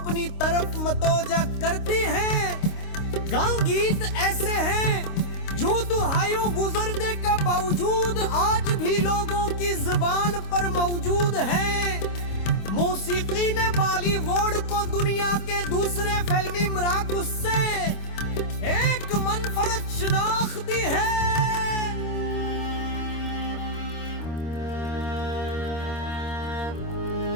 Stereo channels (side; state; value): right; late; 26 ms